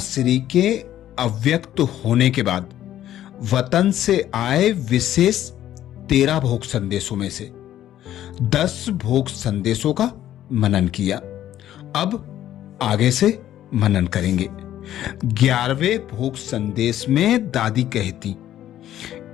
के अव्यक्त होने के बाद वतन से आए विशेष 13 भोग संदेशों में से 10 भोग संदेशों का मनन किया। अब आगे से मनन करेंगे। 11वें भोग संदेश में दादी कहती,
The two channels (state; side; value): quieter; right; 12.2 dB